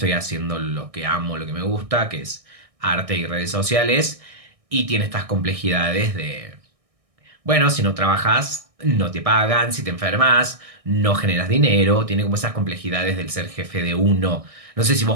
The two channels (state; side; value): late; left; 1.6 ms